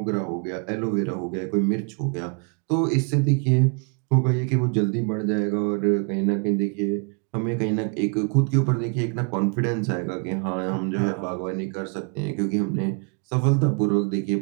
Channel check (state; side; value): quieter; left; 39.5 dB